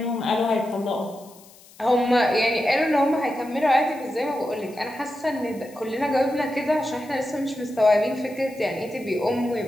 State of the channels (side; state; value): left; noise; hiss, 24 dB below the sound